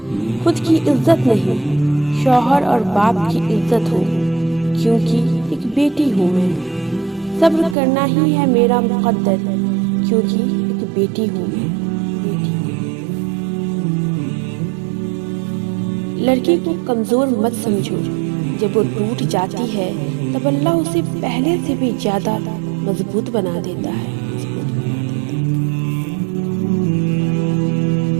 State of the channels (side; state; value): left; drops out; at 7.8 s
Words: خود کی عزت نہیں شوہر اور باپ کی عزت ہوں، کیونکہ ایک بیٹی ہوں میں، صبر کرنا ہی ہے میرا مقدر، کیونکہ ایک بیٹی ہوں میں۔ لڑکی کو کمزور مت سمجھو، جب وہ ٹوٹ جاتی ہے تب اللہ اسے پہلے سے بھی زیادہ مضبوط بنا دیتا ہے۔